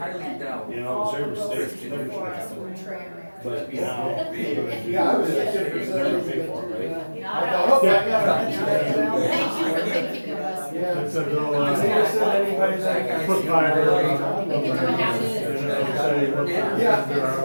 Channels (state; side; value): inverted; both; correlation -1.00